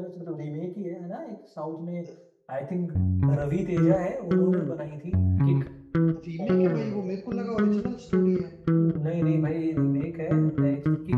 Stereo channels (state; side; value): identical; both; correlation 1.00